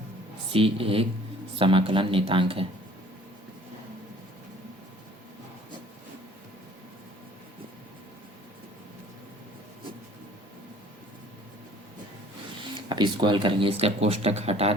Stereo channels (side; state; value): both; normal; correlation 0.53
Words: c एक समाकलन नियतांक है। अब इसको हल करेंगे, इसका कोष्टक हटा